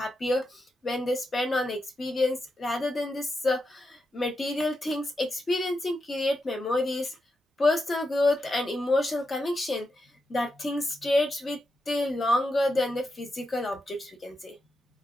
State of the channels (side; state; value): both; normal; correlation 0.86